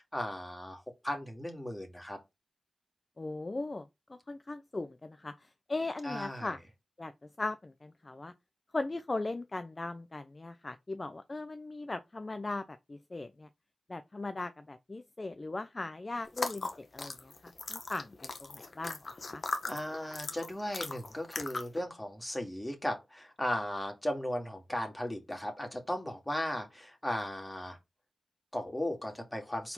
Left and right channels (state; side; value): normal; both; correlation 0.97